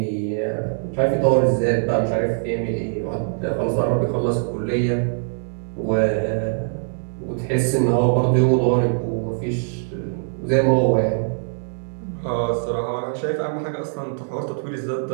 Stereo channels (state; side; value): silent; left; 64 dB below the other